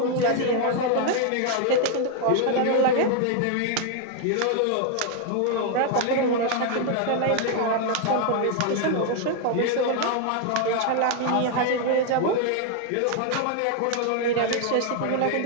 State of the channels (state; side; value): different; both; correlation 0.00